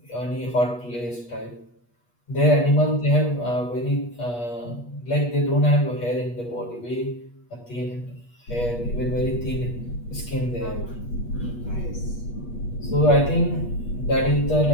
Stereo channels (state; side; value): late; right; 8.3 ms